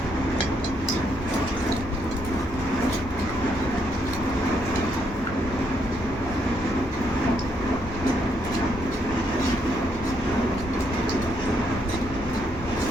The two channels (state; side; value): normal; both; correlation 0.75